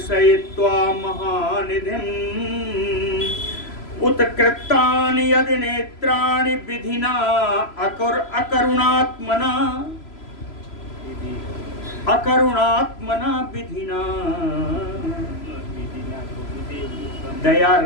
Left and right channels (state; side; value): late; right; 3.0 ms